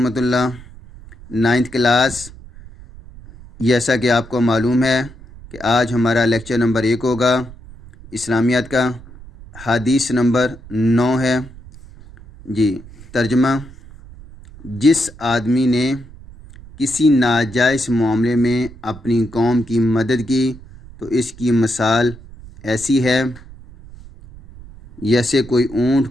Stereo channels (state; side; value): noise; right; rumble, 19 dB below the sound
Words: اللہ۔ 9th کلاس، جیسا کہ آپ کو معلوم ہے کہ آج ہمارا لیکچر نمبر 1 ہوگا اسلامیات کا۔ حدیث نمبر 9 ہے جی۔ ترجمہ: جس آدمی نے کسی ناجائز معاملے میں اپنی قوم کی مدد کی تو اس کی مثال ایسی ہے جیسے کوئی اونٹ